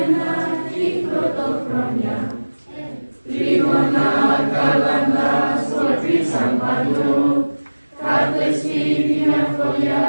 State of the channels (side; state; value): both; inverted; correlation -1.00